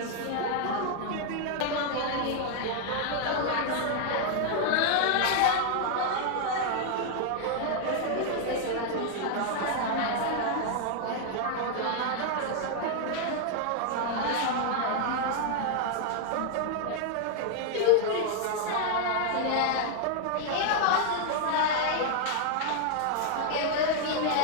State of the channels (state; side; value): different; both; correlation 0.00